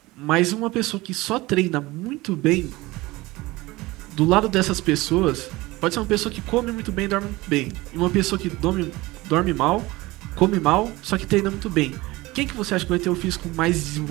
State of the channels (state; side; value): quieter; left; 20.4 dB